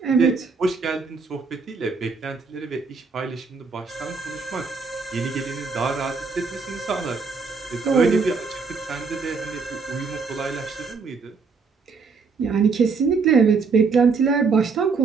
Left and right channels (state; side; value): quieter; left; 4.8 dB